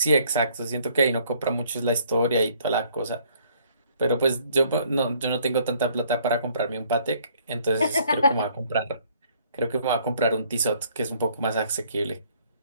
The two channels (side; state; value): both; inverted; correlation -0.62